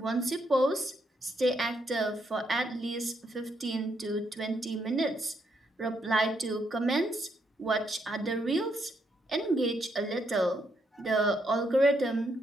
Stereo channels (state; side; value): normal; both; correlation 0.76